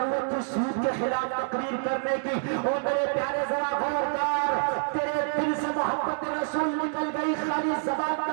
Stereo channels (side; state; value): left; silent; digital silence